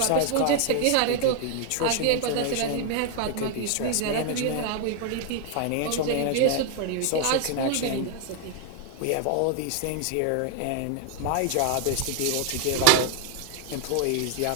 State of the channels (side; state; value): both; different; correlation 0.00